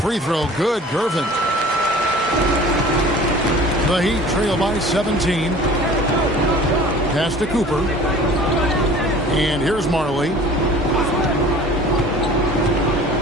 throw good, Gervin. The Heat trail by 17. Pass to Cooper. And here's Marley.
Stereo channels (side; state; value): both; normal; correlation 0.45